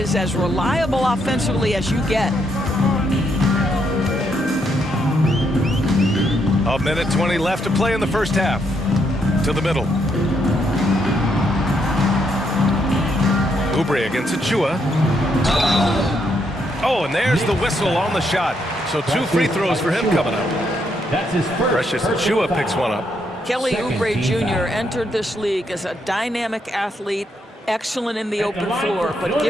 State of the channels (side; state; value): both; normal; correlation 0.76